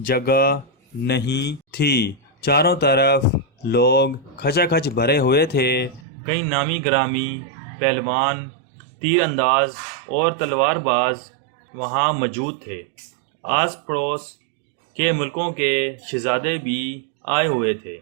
نہیں تھی، چاروں طرف لوگ کھچا کھچ بھرے ہوئے تھے۔ کئی نامی گرامی پہلوان، تیر انداز اور تلوار باز وہاں موجود تھے۔ آس پڑوس کے ملکوں کے شہزادے بھی آئے ہوئے تھے۔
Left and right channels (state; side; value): drops out; left; at 6.0 s